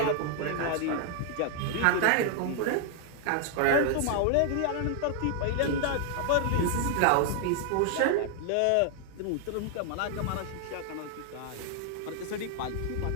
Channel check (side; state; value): both; different; correlation 0.00